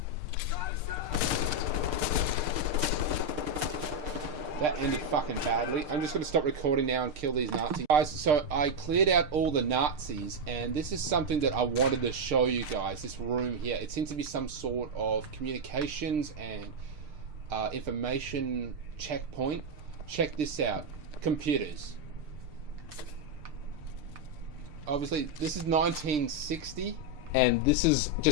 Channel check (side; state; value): left; late; 6.6 ms